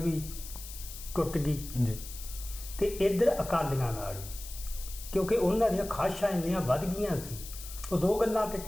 ਟੁੱਟ ਗਈ ਤੇ ਇੱਧਰ ਅਕਾਲੀਆਂ ਨਾਲ ਵੀ, ਕਿਉਂਕਿ ਉਹਨਾਂ ਦੀਆਂ ਖਾਸ਼ਾਂ ਇੰਨੀਆਂ ਵੱਧ ਗਈਆਂ ਸੀ। ਉਹ 2 ਗੱਲਾਂ 'ਤੇ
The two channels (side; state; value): left; noise; hiss, 12 dB below the sound